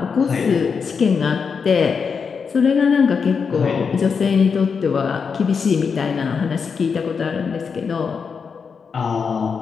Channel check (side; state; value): right; quieter; 5.8 dB